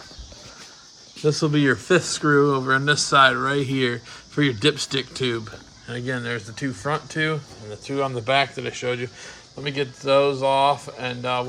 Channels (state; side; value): identical; both; correlation 1.00